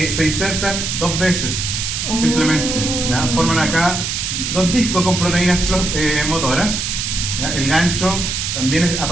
insertan dos veces, simplemente. ¿Ya? Forman acá dos discos con proteínas motoras. ¿Ya? El gancho también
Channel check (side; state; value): right; noise; hiss, 2 dB below the sound